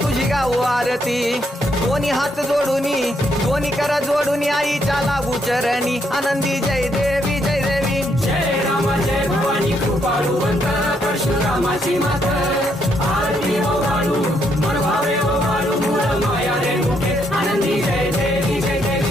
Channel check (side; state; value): both; normal; correlation 0.74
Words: तुझी गाऊ आरती. दोन्ही हात जोडूनी दोन्ही कर जोडूनी आईच्या लागू चरणी आनंदी जय देवी जय देवी. जय राम जय भवानी कृपाळुवंत परशुरामाची मात आरती ओ वाळू मन भावे ओ वाळू मूळ माया रेणुके आनंदी जय देवी जय